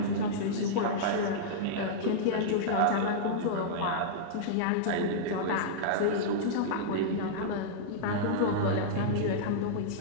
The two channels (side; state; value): both; different; correlation -0.03